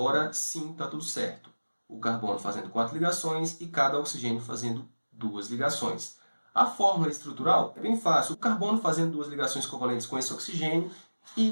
sim está tudo certo. O carbono fazendo 4 ligações e cada oxigênio fazendo 2 ligações. A fórmula estrutural é bem fácil. O carbono fazendo 2 ligações covalentes com esse oxigênio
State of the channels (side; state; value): both; inverted; correlation -1.00